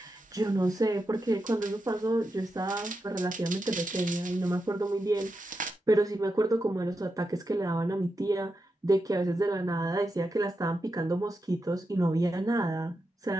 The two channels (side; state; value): both; normal; correlation 0.87